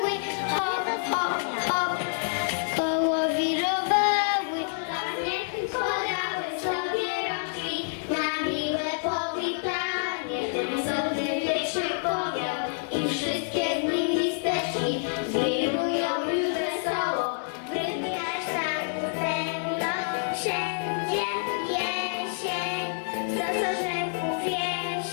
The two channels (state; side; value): silent; right; digital silence